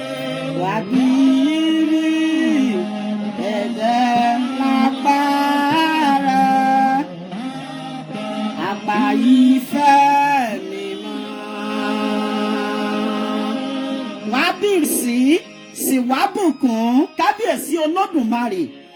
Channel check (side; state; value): both; identical; correlation 1.00